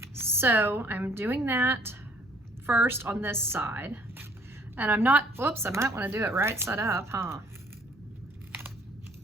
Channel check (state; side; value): normal; both; correlation 0.60